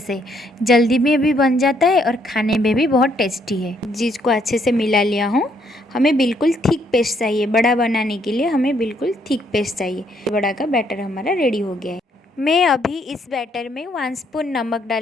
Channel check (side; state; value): both; normal; correlation 0.70